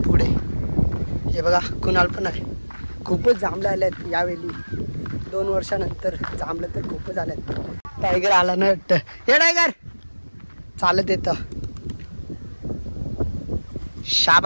पुढे. हे बघा कुणाल पण आहे. खूपच जांभलं आले आहेत यावेळी. 2 वर्षानंतर जांभलं तर खूपच आले आहेत. टायगर आला ना वाटतं. हे टायगर चालत येतं.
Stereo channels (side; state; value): both; inverted; correlation -1.00